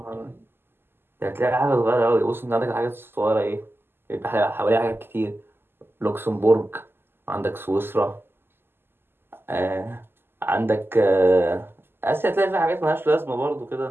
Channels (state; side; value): late; left; 0.11 ms